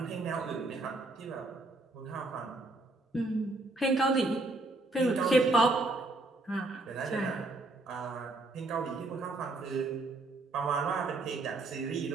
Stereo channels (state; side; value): quieter; left; 3.1 dB